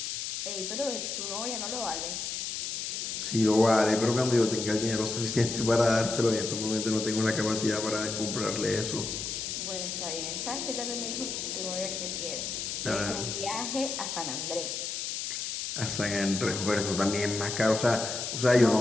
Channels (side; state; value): left; noise; hiss, 4 dB below the sound